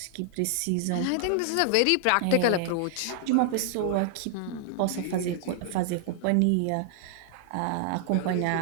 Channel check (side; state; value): both; different; correlation 0.00